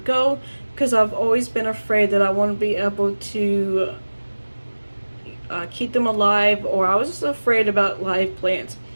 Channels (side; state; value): both; inverted; correlation -1.00